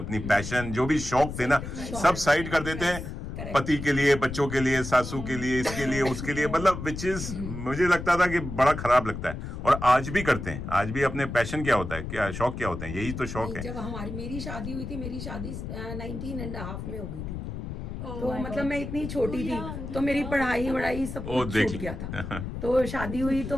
पैशन, जो भी शौक थे ना, सब साइड कर देते हैं पति के लिए, बच्चों के लिए, सासू के लिए, इसके लिए, उसके लिए. मतलब विच इज मुझे लगता था कि बड़ा खराब लगता है. और आज भी करते हैं. आज भी अपने पैशन क्या होता है, क्या शौक क्या होते हैं, यही तो शौक है. जब मेरी शादी हुई थी, मेरी शादी 19.5 में हो गई थी. तो मतलब मैं इतनी छोटी थी, तो मेरी पढ़ाई सब कुछ छूट गया था. तो शादी हुई तो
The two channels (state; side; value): noise; left; rumble, 7 dB below the sound